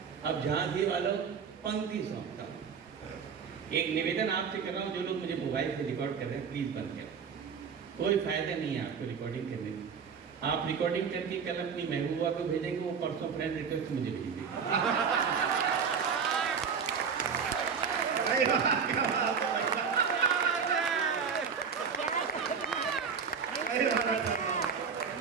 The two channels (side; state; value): left; quieter; 6.3 dB